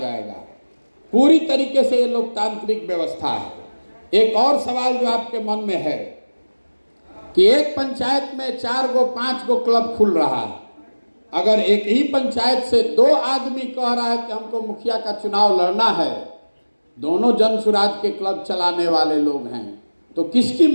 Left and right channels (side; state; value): both; inverted; correlation -1.00